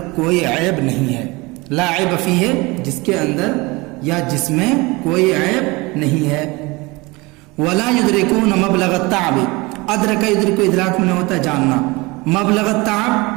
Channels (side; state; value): left; quieter; 24.1 dB